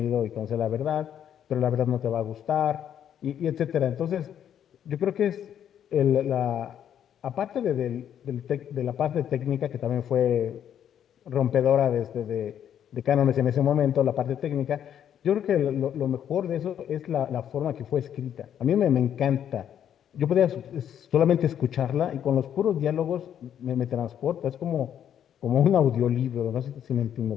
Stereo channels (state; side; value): quieter; right; 9.6 dB